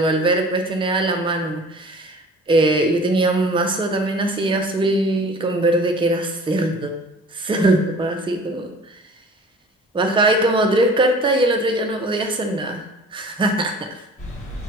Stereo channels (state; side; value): normal; both; correlation 0.46